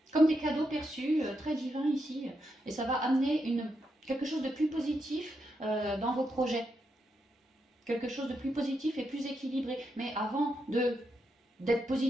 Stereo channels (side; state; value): both; normal; correlation 0.83